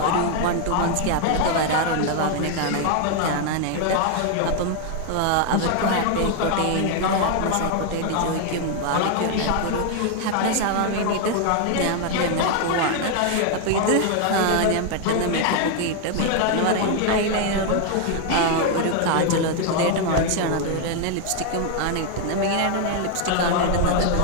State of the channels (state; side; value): different; both; correlation 0.00